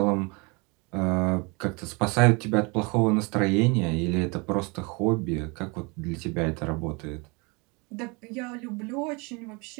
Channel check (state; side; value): quieter; left; 29.1 dB